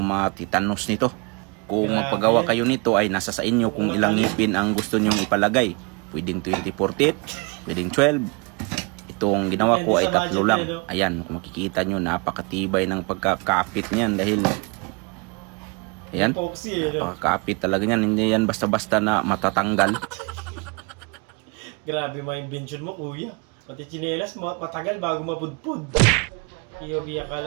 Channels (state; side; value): quieter; left; 31.5 dB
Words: nito. Kung magpagawa kayo nito ay nasa sa inyo kung ilang ngipin ang gusto nyong ipalagay. Pwedeng 24 teeth, pwedeng 12. Itong ginawa ko ay 3 lang. Ayan, kung makikita nyo, napakatibay ng pagkakapit niyan dahil ayan, napakakapit talaga niyan. Hindi yan basta-basta na matatanggal. Grabe mga invention mo, kuya. Pati chinelas, matagal bago mapudpud. Iyobi,